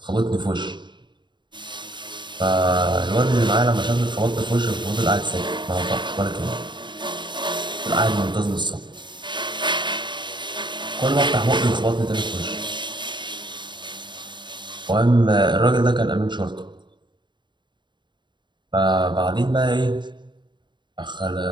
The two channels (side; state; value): left; late; 0.22 ms